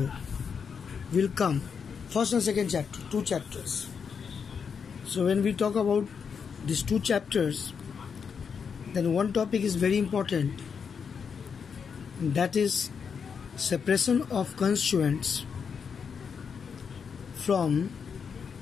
will come first and second chapter, 2 chapters. So when we talk about these 2 chapters, then one topic is very important, that is separation of constituents from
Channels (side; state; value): right; quieter; 6.4 dB